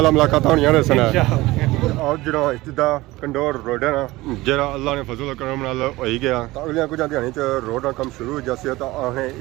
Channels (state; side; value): quieter; left; 19.3 dB